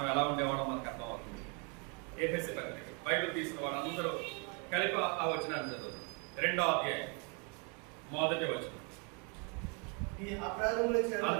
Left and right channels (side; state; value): left; quieter; 34.5 dB